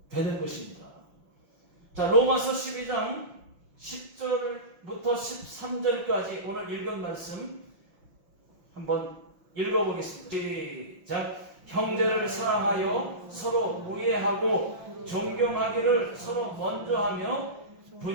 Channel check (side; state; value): left; late; 5.9 ms